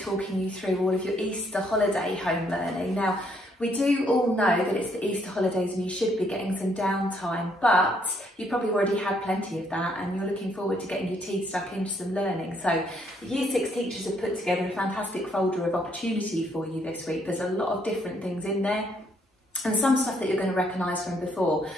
talking you through all of your Easter holiday home learning. Now, we do all know that it's the Easter holidays and you should be getting some downtime, but you've probably already had plenty of that and you're looking forward to getting your teeth stuck into some learning. So the Year 6 teachers have put together a fantastic folder of opportunity for you this week. There's a lot of different things in there and some stuff that you're going to recognise from before.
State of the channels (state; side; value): normal; both; correlation 0.70